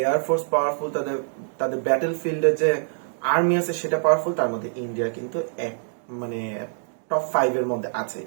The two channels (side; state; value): left; silent; digital silence